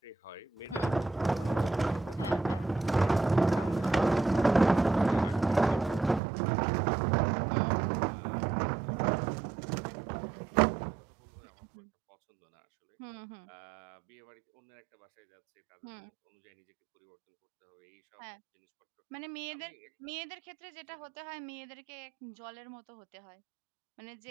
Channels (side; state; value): left; drops out; at 6.2 s